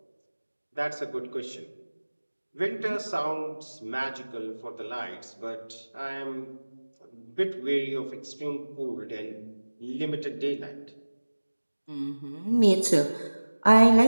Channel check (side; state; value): both; inverted; correlation -1.00